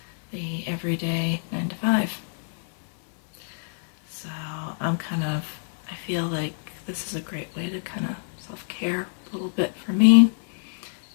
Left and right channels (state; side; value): silent; right; 61 dB below the other